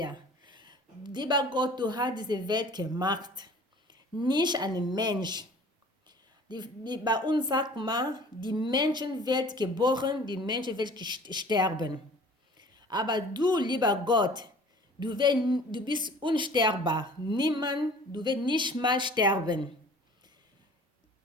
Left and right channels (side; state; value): both; normal; correlation 0.47